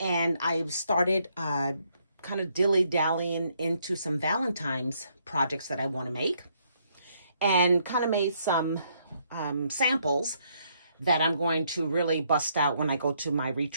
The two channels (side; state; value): both; inverted; correlation -0.72